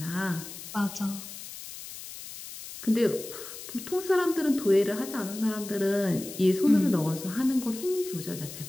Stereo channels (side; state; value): left; noise; hiss, 12 dB below the sound